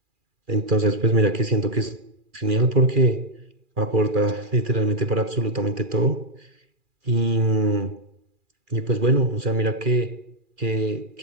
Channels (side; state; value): left; late; 2.4 ms